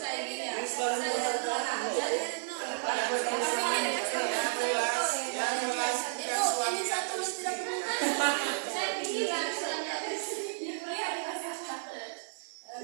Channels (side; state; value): left; silent; 56 dB below the other